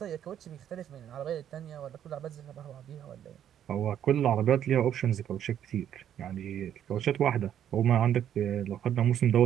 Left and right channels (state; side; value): quieter; left; 10.1 dB